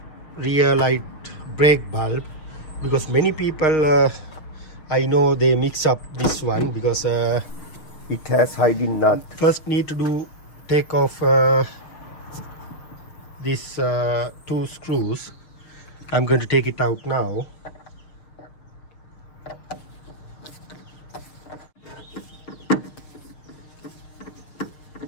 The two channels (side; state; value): right; late; 6.5 ms